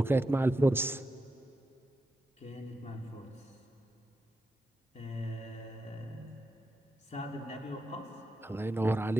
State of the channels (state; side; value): normal; both; correlation 0.87